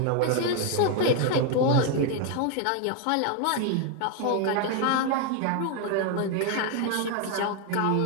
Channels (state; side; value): different; both; correlation 0.01